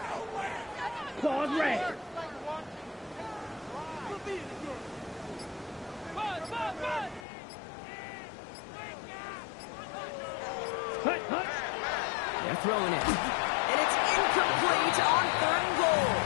Claws red. Hut, hut. They're throwing it. And it's incomplete on 3rd and goal.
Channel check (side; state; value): right; drops out; at 7.2 s